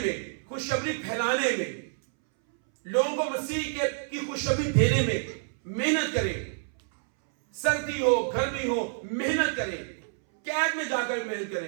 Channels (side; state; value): left; silent; 59 dB below the other